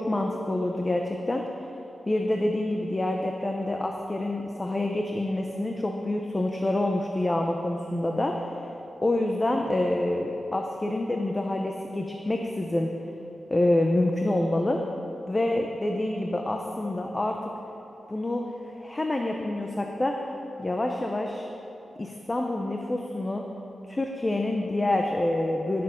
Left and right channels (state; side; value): normal; both; correlation 0.95